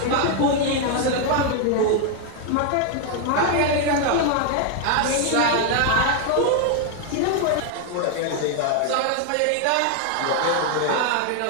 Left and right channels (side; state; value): both; different; correlation 0.00